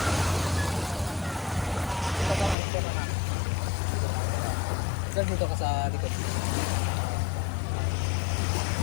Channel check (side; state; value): right; drops out; at 2.6 s